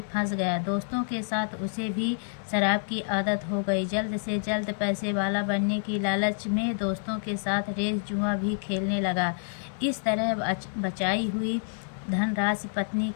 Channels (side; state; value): right; silent; digital silence